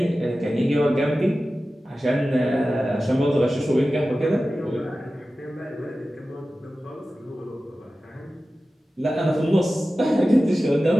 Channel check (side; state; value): both; normal; correlation 0.95